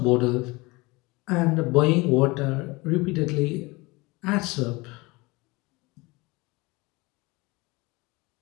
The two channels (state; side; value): quieter; right; 24.1 dB